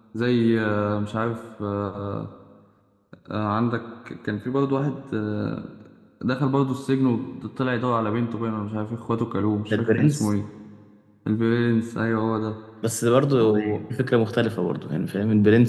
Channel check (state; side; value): identical; both; correlation 1.00